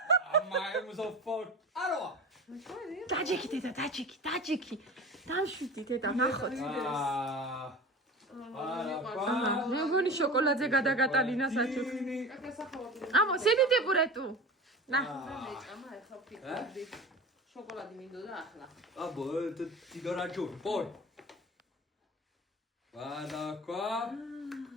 ამაემზოფორ აროა დაჯექი დედა დაჯექი დამშვიდი დედა ნახოთ მე მგონი შოკოლადზე გადაგატალინა საჩუქრი ამო სიდიდე პურეტუ ნა ამა ახლა ფიქრობდი შოკოლადი მინდოდა ახლა აბო ტიგარაჯო პოი ვადაკვა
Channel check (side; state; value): both; normal; correlation 0.33